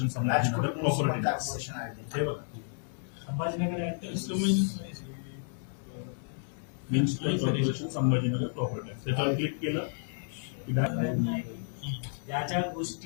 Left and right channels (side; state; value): right; silent; 56 dB below the other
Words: Sambhajinagar property tax. हे बघा, Sambhajinagar municipal corporation Sambhajinagar property tax. त्याच्यावर क्लिक केलं की ज्या ज्या